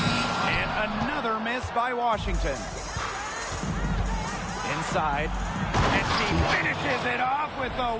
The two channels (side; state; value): both; identical; correlation 1.00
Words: And another miss by Washington. Inside. And she finishes it off with a